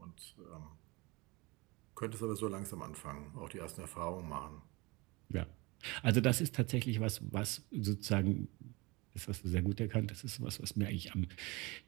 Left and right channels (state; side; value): quieter; left; 24.8 dB